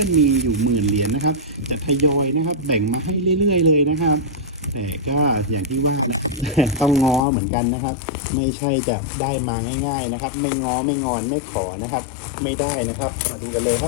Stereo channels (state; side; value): drops out; right; at 7.2 s